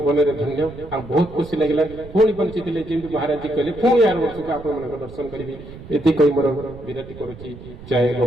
में धन्य आ बहुत खुशी लगिला पुणी बंची थिले जेमि महाराज जी कहले पुणी यार वर्ष को आपण मन दर्शन करिवि एति कहि मोर विनती करूची जय गो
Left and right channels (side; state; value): right; noise; rumble, 16 dB below the sound